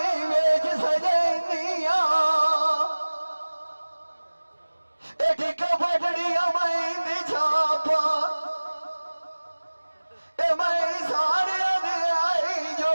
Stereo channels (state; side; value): inverted; both; correlation -1.00